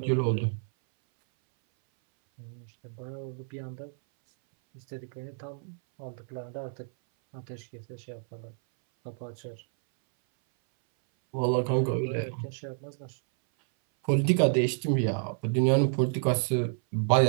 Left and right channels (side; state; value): left; silent; 58 dB below the other